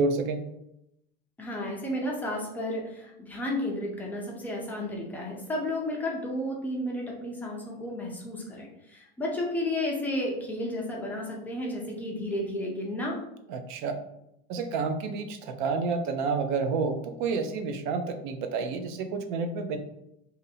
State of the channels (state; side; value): normal; both; correlation 0.26